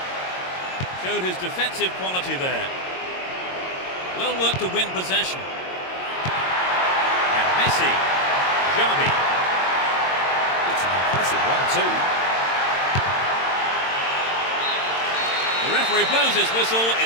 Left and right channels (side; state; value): right; late; 22 ms